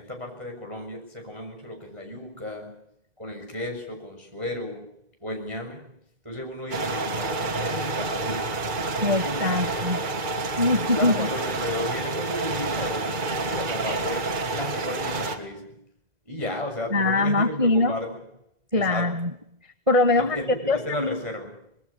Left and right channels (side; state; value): left; late; 2.0 ms